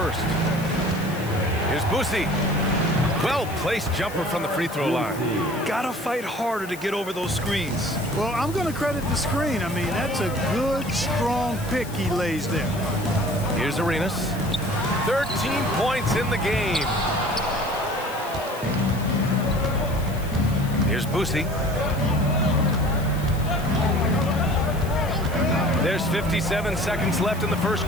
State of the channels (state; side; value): noise; left; hiss, 17 dB below the sound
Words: Here's Boosie. Well-placed jumper from the free throw line. Gotta fight harder to get over those screens. Well, I'm going to credit the screen. I mean, that's a good, strong pick he lays there. Here's Arenas. 13 points in the game. Here's Boosie. There's 57 seconds left in the first